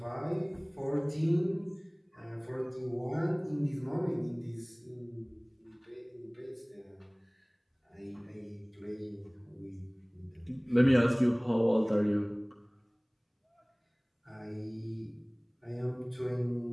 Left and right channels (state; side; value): identical; both; correlation 1.00